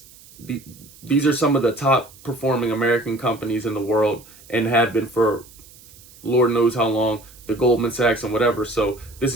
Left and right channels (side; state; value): right; noise; hiss, 23 dB below the sound